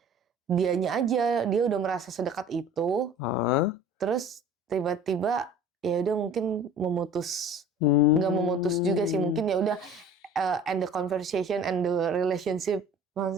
dianya aja dia udah merasa sedekat itu, terus tiba-tiba ya udah mungkin memutus, nggak memutus juga sih, mungkin ya udah end the conversation and the relationship,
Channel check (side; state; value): both; normal; correlation 0.44